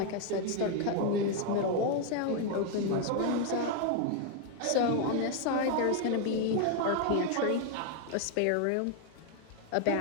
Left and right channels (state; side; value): different; both; correlation 0.01